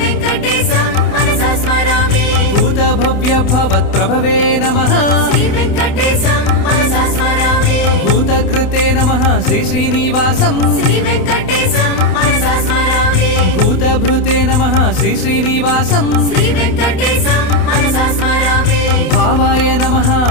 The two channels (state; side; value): late; right; 28 ms